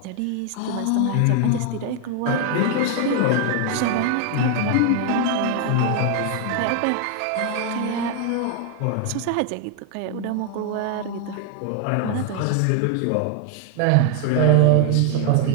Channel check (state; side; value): different; both; correlation 0.00